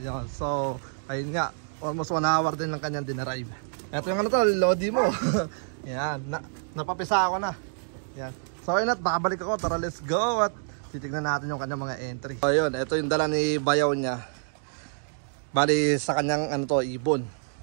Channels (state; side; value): silent; left; digital silence